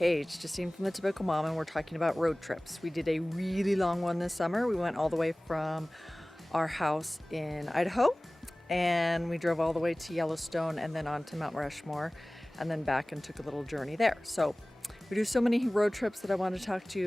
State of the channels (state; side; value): normal; both; correlation 0.98